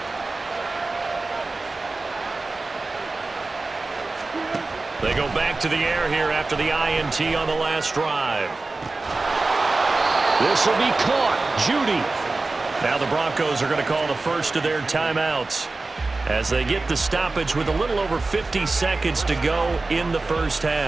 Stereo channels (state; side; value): quieter; left; 3.5 dB